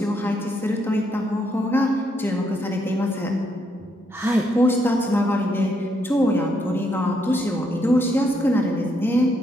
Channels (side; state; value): both; normal; correlation 0.76